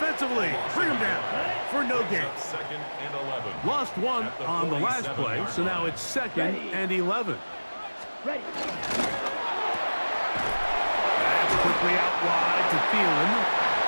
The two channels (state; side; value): inverted; both; correlation -1.00